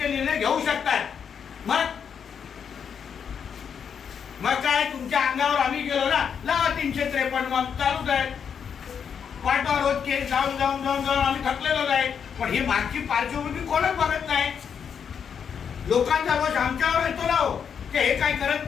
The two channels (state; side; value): quieter; right; 7.3 dB